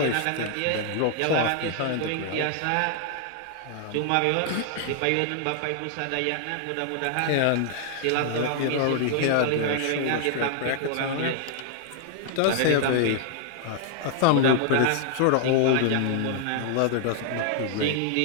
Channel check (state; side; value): different; both; correlation 0.00